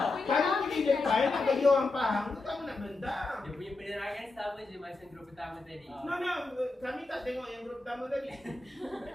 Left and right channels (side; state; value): right; quieter; 3.3 dB